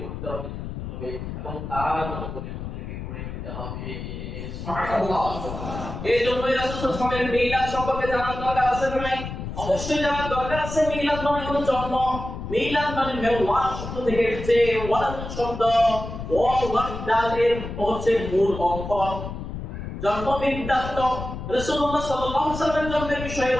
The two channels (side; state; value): left; noise; rumble, 8 dB below the sound